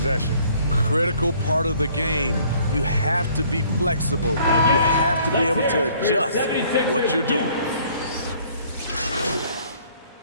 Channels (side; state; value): both; inverted; correlation -0.59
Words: Critical part of the game. You have to be flexible. You have to be able to adjust what you're doing.